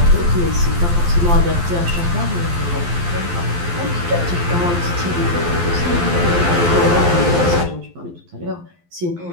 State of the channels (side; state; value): left; late; 12 ms